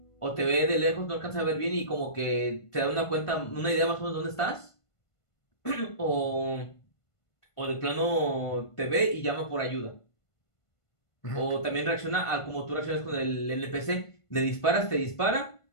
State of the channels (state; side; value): late; right; 1.5 ms